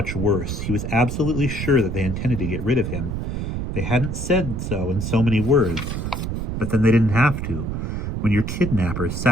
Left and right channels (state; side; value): noise; right; rumble, 3 dB below the sound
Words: worse. He was absolutely sure that they intended to get rid of him. They hadn't said so in so many words, but then they didn't have to. When your kidnappers